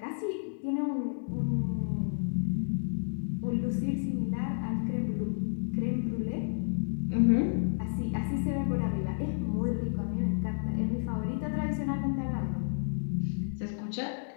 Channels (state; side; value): silent; right; 57 dB below the other